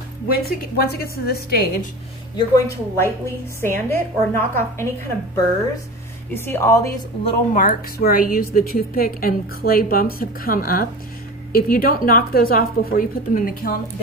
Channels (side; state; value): both; normal; correlation 0.33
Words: once it gets to this stage, you're going to lightly sand it or knock off any kind of burrs. You see all these little marks where I use the toothpick and clay bumps have come up. If you don't knock those off before you put them in the kiln,